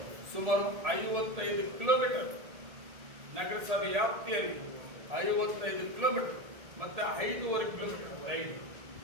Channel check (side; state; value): left; late; 1.8 ms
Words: ಸುಮಾರು 55 ಕಿಲೋಮೀಟರ್ ನಗರಸಭೆ ವ್ಯಾಪ್ತಿಯಲ್ಲಿ 55 ಕಿಲೋಮೀಟರ್ ಮತ್ತೆ 5.5 ಕಿಲೋಮೀಟರ್ ರೈಲ್.